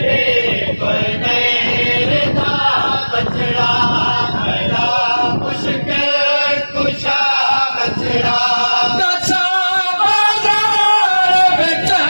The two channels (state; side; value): inverted; both; correlation -1.00